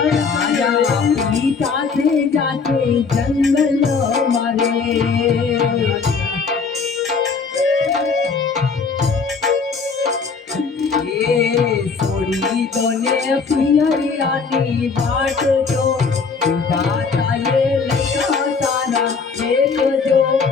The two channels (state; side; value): quieter; right; 5.1 dB